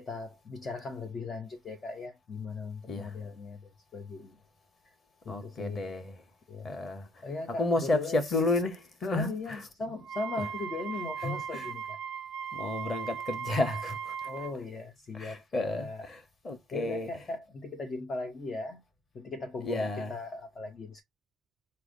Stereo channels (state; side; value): normal; both; correlation 0.64